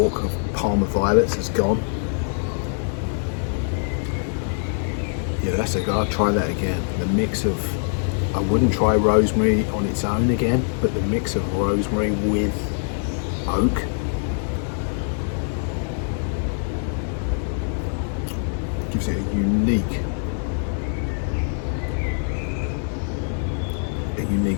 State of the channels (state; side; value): silent; right; digital silence